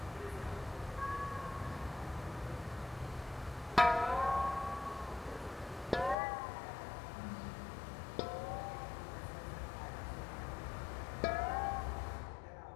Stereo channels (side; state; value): right; drops out; at 6.2 s